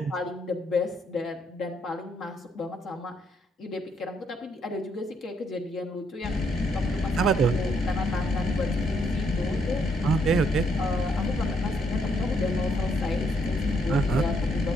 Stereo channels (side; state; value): both; normal; correlation 0.73